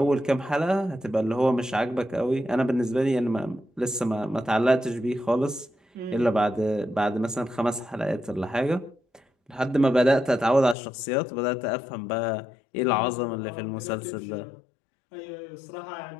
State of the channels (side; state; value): right; drops out; at 10.8 s